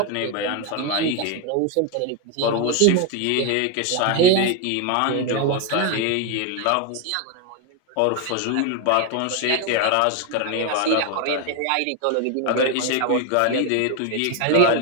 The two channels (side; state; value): both; different; correlation 0.01